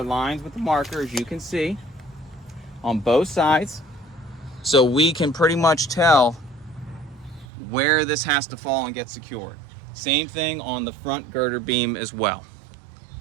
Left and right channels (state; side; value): drops out; left; at 7.5 s